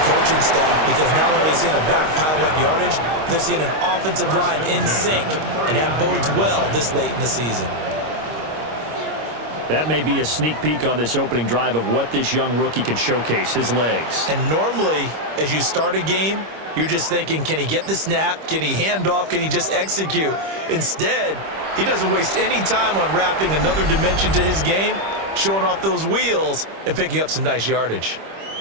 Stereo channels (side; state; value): left; late; 26 ms